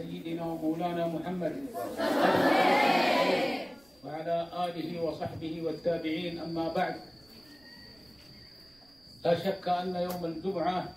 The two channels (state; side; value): noise; right; rumble, 30 dB below the sound